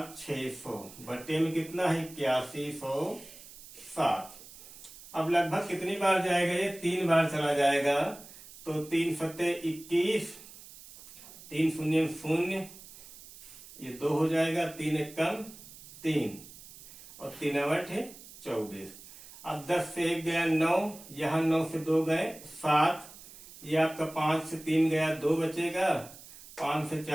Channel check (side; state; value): right; noise; hiss, 18 dB below the sound